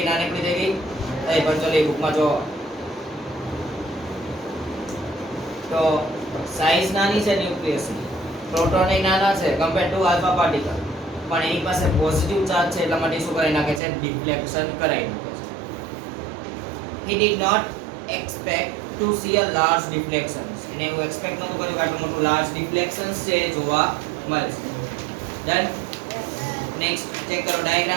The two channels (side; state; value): left; drops out; at 13.8 s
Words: નાનકડી દેગી એ પણ ચલો એ બુક માં જો તો સાઈઝ નાની છે ન્યુક્લિયસ ની પ્રોટોન એ નાના છે કમ્પેર ટુ આલ્ફા પાર્ટિકલ પણ એની પાસે પોઝિટિવ ચાર્જ છે એટલા માટે શું કરી નાખે છે ડિફ્લેક્શન કરાવી નાખે છે he did not expect to see a large deflection એને એવું એક્સપેક્ટ નહોતું કર્યું કે આટલું મોટું લાર્જ ડિફ્લેક્શન્સ છે જોવા મળશે ડન નેક્સ્ટ ચેક કરો